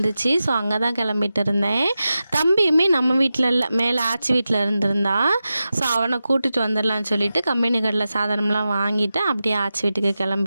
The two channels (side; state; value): both; inverted; correlation -0.93